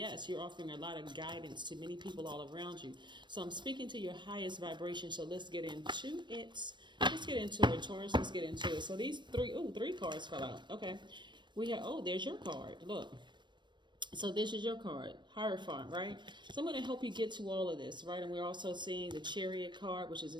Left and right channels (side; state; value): left; late; 0.22 ms